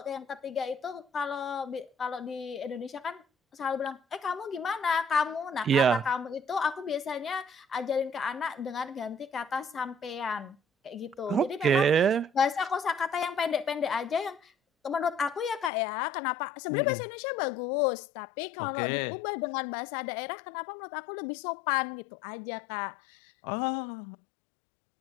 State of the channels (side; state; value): right; drops out; at 15.7 s